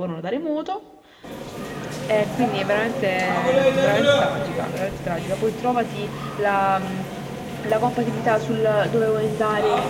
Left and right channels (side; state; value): both; identical; correlation 1.00